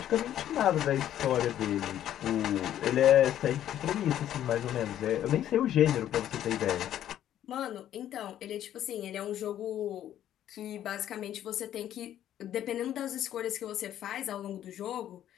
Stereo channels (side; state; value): right; quieter; 11.4 dB